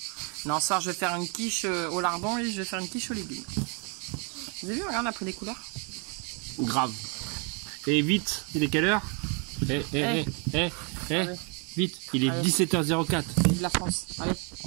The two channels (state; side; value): quieter; left; 36.0 dB